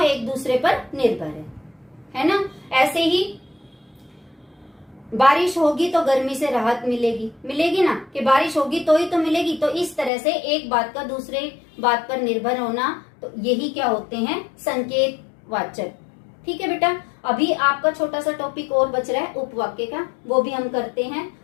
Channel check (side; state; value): right; drops out; at 10.1 s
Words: एक दूसरे पर निर्भर है ना। ऐसे ही बारिश होगी तो गर्मी से राहत मिलेगी ना, कि बारिश होगी तो ही तो मिलेगी। तो इस तरह से एक बात का दूसरे बात पर निर्भर होना, तो यही क्या होते हैं? संकेतवाचक। ठीक है बेटा, अभी आपका छोटा सा टॉपिक और बच रहा है उपवाक्य का, वो भी हम करते हैं।